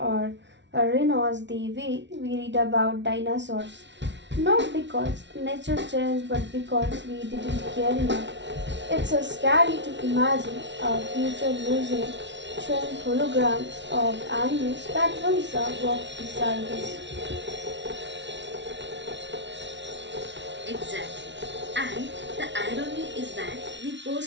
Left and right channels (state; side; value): late; left; 0.52 ms